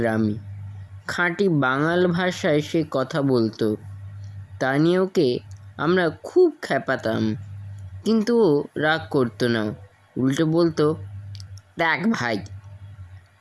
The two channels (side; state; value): both; identical; correlation 1.00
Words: খাঁটি বাঙাল ভাষায় সে কথা বলতো। তা নিয়ে ওকে আমরা খুব খেপাতাম, কিন্তু ও রাগ করতো না। উল্টে বলতো, দেখ ভাই,